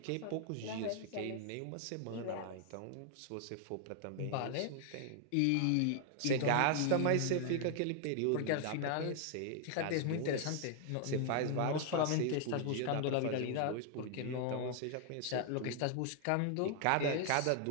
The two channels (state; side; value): different; both; correlation 0.00